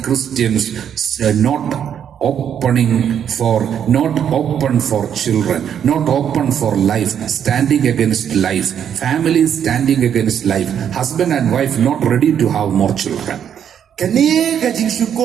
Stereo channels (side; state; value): left; quieter; 8.8 dB